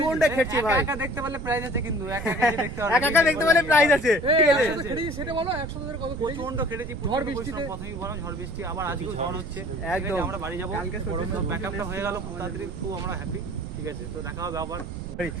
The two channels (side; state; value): right; noise; rumble, 8 dB below the sound